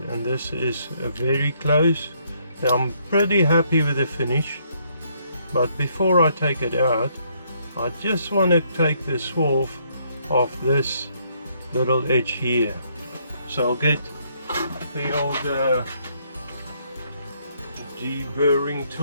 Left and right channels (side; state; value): both; inverted; correlation -0.70